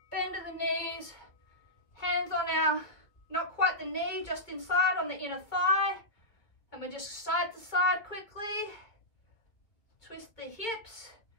bend at the knees, hands on our, not quite the knee, just inside on the inner thigh. And we're just side to side quickly. Twist the hips,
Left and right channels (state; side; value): late; right; 2.0 ms